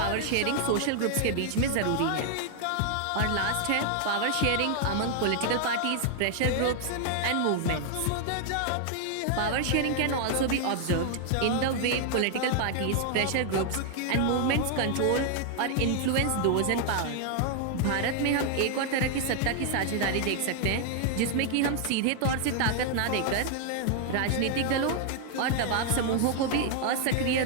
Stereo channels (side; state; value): both; different; correlation 0.00